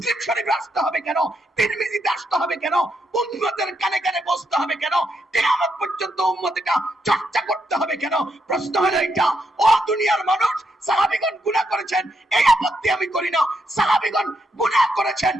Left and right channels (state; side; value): normal; both; correlation 0.80